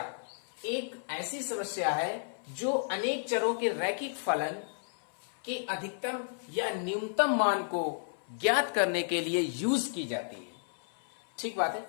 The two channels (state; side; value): silent; right; 56 dB below the other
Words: एक ऐसी समस्या है जो अनेक चरों के रैखिक फलन के अधिकतम या न्यूनतम मान को ज्ञात करने के लिए यूज की जाती है। ठीक बात है,